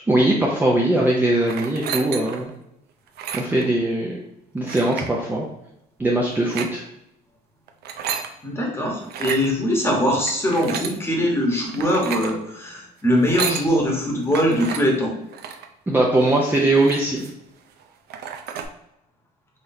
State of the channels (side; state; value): both; normal; correlation 0.65